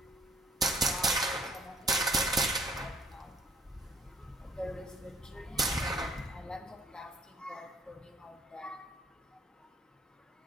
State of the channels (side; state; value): both; normal; correlation 0.59